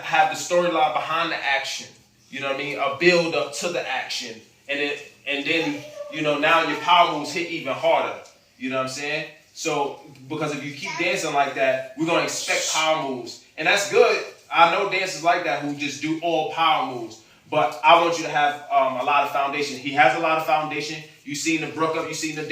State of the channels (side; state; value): both; identical; correlation 1.00